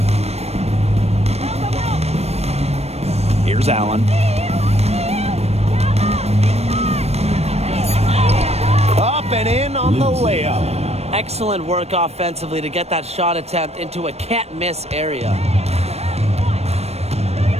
Here's Allen. Up and in on the layup. Excellent work offensively to get that shot attempt into a can't-miss area.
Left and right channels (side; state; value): left; late; 0.31 ms